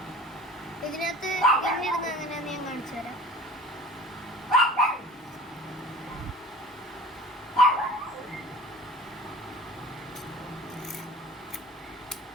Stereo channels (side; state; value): both; normal; correlation 0.42